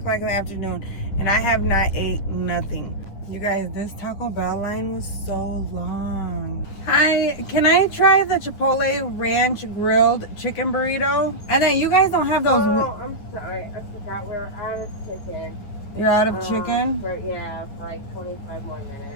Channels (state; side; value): late; right; 10 ms